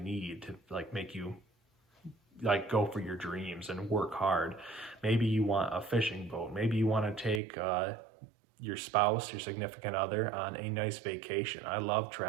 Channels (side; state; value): left; drops out; at 7.4 s